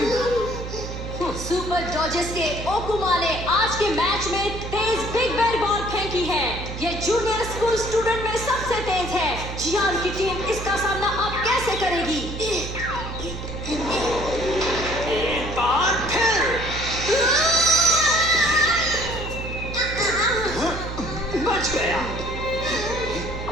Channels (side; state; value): right; noise; hum, 8 dB below the sound